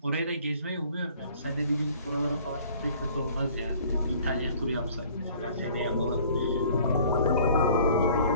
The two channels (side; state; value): both; inverted; correlation -0.53